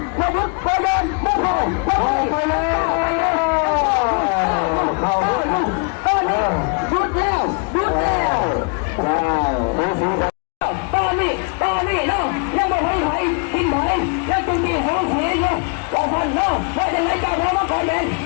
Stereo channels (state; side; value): quieter; right; 36.3 dB